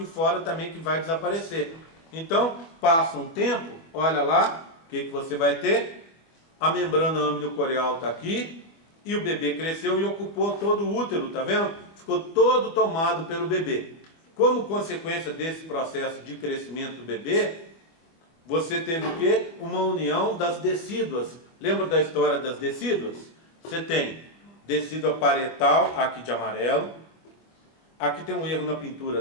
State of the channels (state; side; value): late; right; 24 ms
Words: fora também que vai desaparecer. Então, passa um tempo, olha lá, o que você vai ter? A membrana amniocorial está aqui e o bebê cresceu e ocupou todo o útero, tá vendo? Ficou todo tomado pelo bebê. Como consequência desse processo de crescimento do bebê, você teve o quê? Uma união das decíduas. Lembra da história das decíduas? Você tem decídua parietal, aqui de amarelo. Aqui tem um erro na